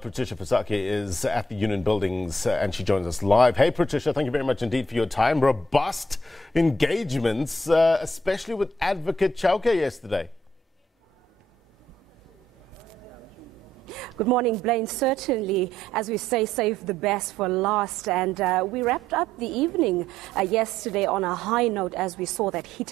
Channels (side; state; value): both; normal; correlation 0.70